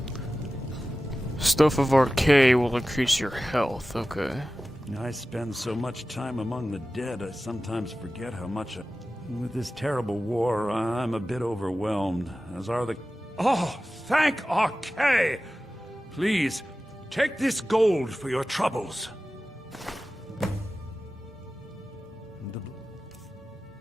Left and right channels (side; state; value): both; normal; correlation 0.95